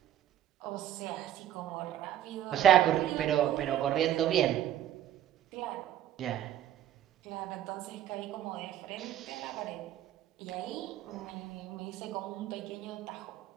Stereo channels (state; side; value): quieter; left; 11.9 dB